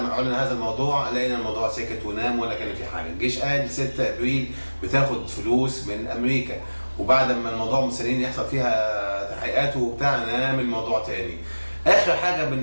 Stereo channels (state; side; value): inverted; both; correlation -1.00